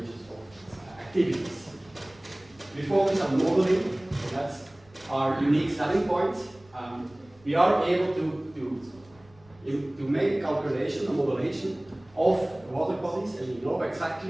of activities. We focus on modeling, so that's our unique selling point. We are able to make a calculation, a modelation of water bodies, and we know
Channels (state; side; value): noise; right; rumble, 28 dB below the sound